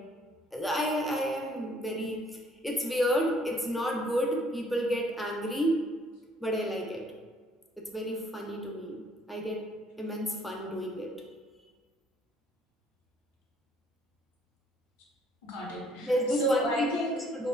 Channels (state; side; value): normal; both; correlation 0.63